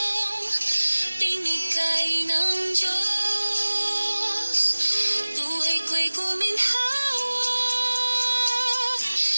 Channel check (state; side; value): inverted; both; correlation -1.00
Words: binigay ng Diyos. Buhay ko'y guminhawa,